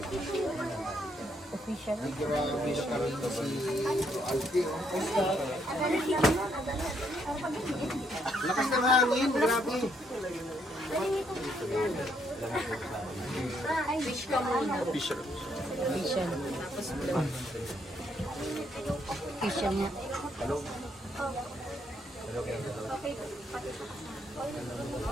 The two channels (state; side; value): normal; both; correlation 0.73